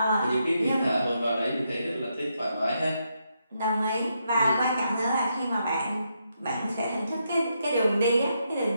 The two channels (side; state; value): both; inverted; correlation -0.80